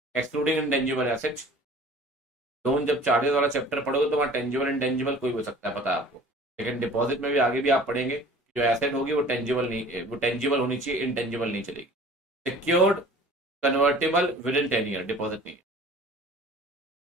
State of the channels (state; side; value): normal; both; correlation 0.47